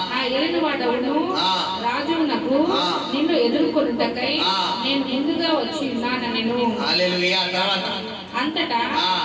నా ఏలినవాడవును రాజునకు నిన్ను ఎదుర్కొనుటకై నేను ముందుగా వచ్చి ఉన్నానెను. అంతటా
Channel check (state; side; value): identical; both; correlation 1.00